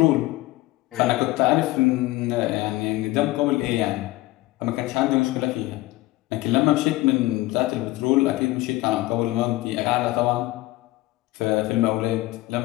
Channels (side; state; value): right; quieter; 18.6 dB